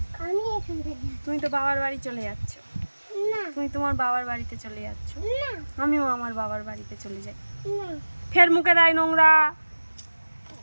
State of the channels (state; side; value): inverted; both; correlation -1.00